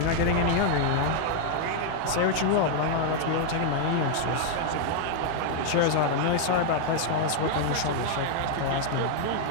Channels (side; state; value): both; different; correlation 0.00